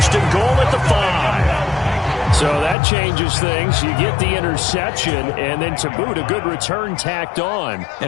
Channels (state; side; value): drops out; right; at 2.8 s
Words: and goal at the 5. So that changes things. You get the interception, and then to boot, a good return tacked on.